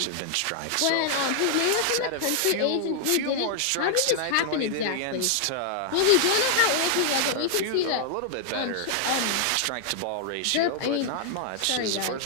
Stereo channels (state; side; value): different; both; correlation 0.00